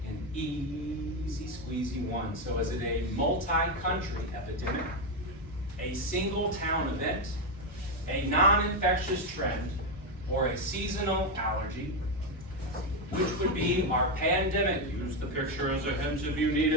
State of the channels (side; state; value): both; normal; correlation 0.07